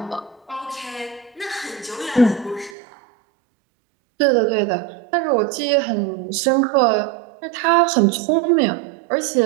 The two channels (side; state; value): left; drops out; at 2.8 s